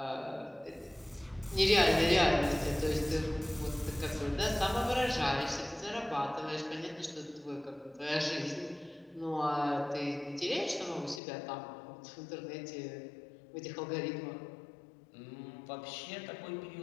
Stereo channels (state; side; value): drops out; right; at 11.2 s